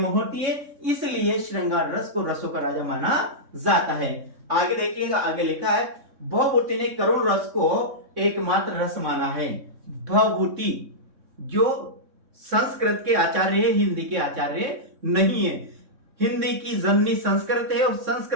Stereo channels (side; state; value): left; late; 3.6 ms